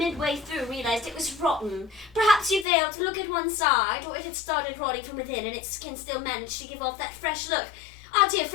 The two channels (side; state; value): right; drops out; at 2.7 s